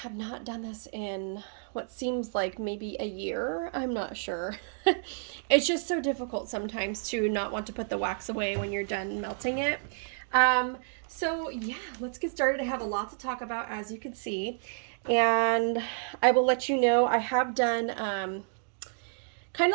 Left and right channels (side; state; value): left; silent; digital silence